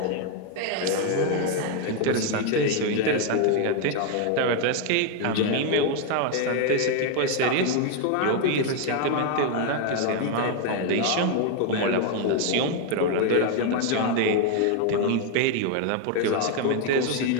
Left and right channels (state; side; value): different; both; correlation 0.01